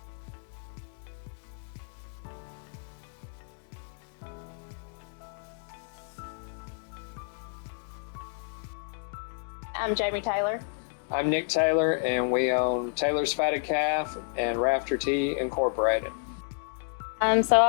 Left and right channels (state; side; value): silent; right; digital silence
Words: operation and new meat processing facility. Nick and Jamie, could you introduce yourselves and tell us a little bit more about your operation and how you started farming? I'm Jamie Taylor. I'm Nick Taylor, and we own Taylor's Fatted Calf and Rafter Tea Incorporated. So